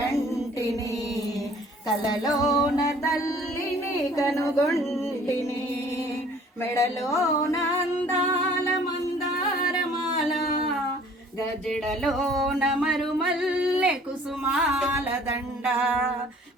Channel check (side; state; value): both; normal; correlation 0.54